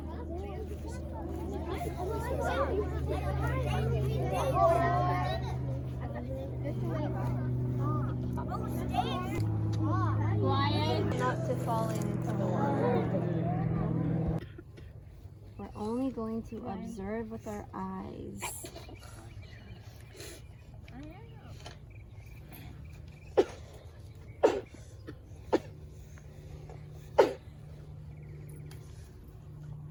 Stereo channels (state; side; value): identical; both; correlation 1.00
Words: Not to fall into the water. We're only going to observe with our eyes.